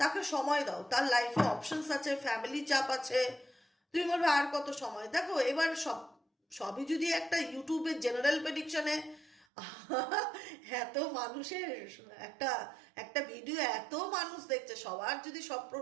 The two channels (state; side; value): drops out; left; at 9.5 s